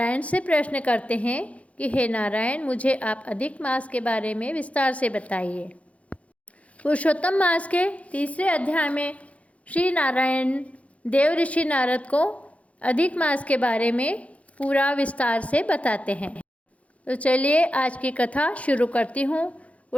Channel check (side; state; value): right; late; 0.065 ms